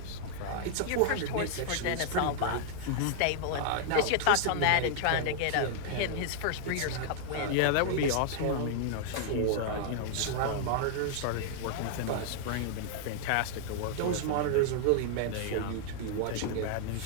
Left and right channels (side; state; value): both; different; correlation -0.01